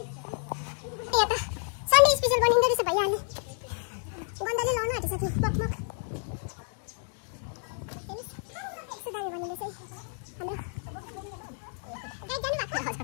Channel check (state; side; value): silent; right; 58 dB below the other